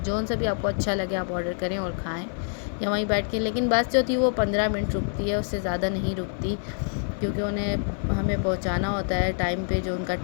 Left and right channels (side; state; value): right; silent; 61 dB below the other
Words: सा भी आपको अच्छा लगे आप ऑर्डर करें और खाएं या वहीं बैठ के। लेकिन बस जो थी वो 15 मिनट रुकती है, उससे ज़्यादा नहीं रुकती, क्योंकि उन्हें हमें पहुंचाना होता है टाइम पे, जो उनका